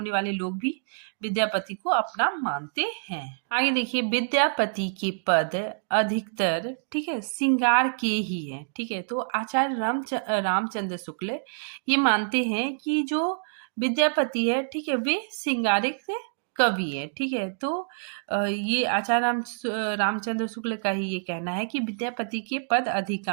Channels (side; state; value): left; silent; digital silence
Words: लोग भी विद्यापति को अपना मानते हैं। आगे देखिए विद्यापति के पद अधिकतर, ठीक है, श्रृंगार के ही है, ठीक है। तो आचार्य रामचंद्र शुक्ल ये मानते हैं कि जो विद्यापति है, ठीक है, वे श्रृंगारिक कवि है, ठीक है। तो ये आचार्य रामचंद्र शुक्ल का ही ये कहना है कि विद्यापति के पद